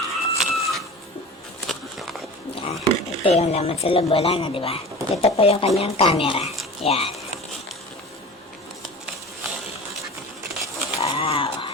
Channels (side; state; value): both; normal; correlation 0.36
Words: Ito yung laman sa loob, wala na, diba? Ito po yung kanyang camera. Yan. Wow.